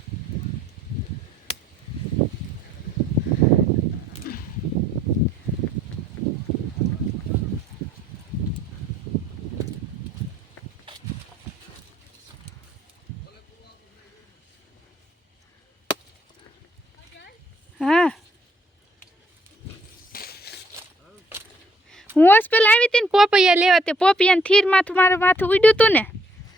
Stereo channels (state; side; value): normal; both; correlation 0.67